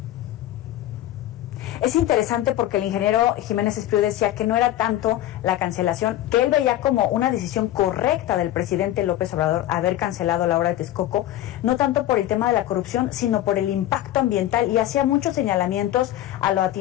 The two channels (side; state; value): right; quieter; 13.6 dB